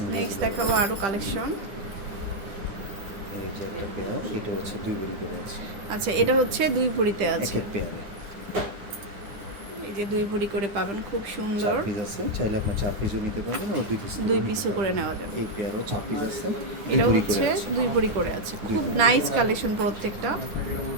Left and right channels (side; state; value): left; late; 10 ms